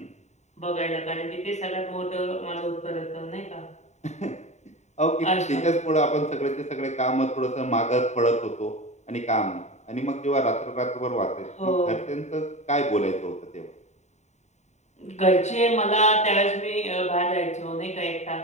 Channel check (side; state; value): right; late; 0.33 ms